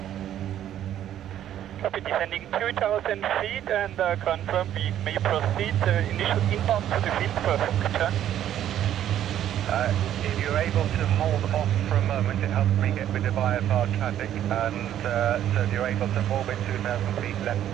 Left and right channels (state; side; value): quieter; left; 11.2 dB